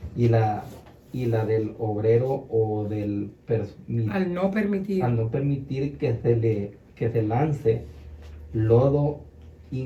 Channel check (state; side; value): identical; both; correlation 1.00